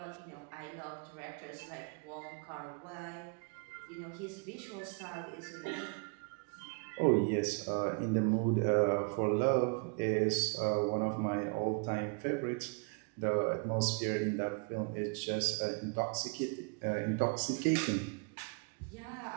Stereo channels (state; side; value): quieter; left; 35.1 dB